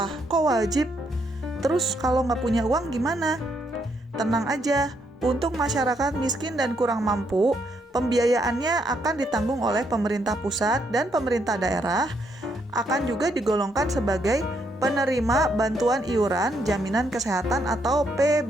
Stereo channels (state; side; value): normal; both; correlation 0.75